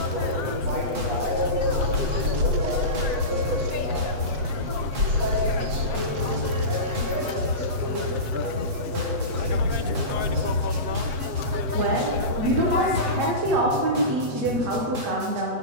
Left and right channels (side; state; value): left; late; 8.1 ms